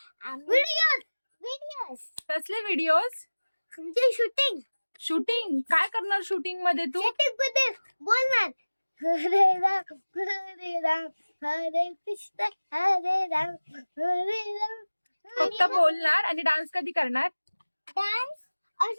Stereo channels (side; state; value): both; inverted; correlation -1.00